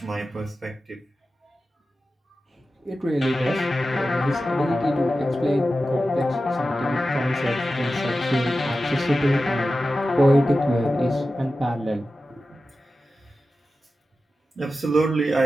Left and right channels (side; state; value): both; normal; correlation 0.93